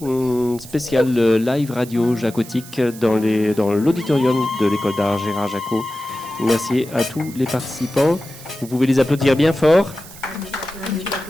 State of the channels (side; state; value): right; noise; hiss, 17 dB below the sound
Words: spéciale live radio jacotique dans l'auditorium de l'école d'art Gérard Jacot. Merci à tous les participants. Vous pouvez les applaudir bien fort.